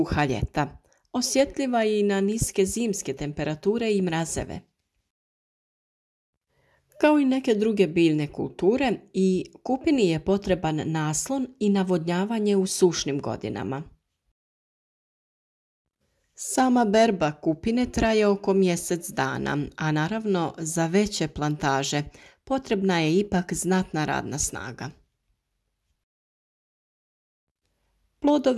ljeta. Osjetljiva je i na niske zimske temperature i mrazeve. Kao i neke druge biljne kulture, i kupini je potreban naslon i navodnjavanje u sušnim godinama. Sama berba kupine traje oko mjesec dana, a naravno za veće plantaže potrebna je ipak znatna radna snaga.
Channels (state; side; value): identical; both; correlation 1.00